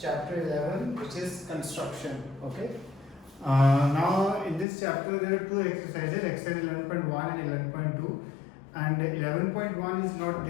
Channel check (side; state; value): right; drops out; at 4.7 s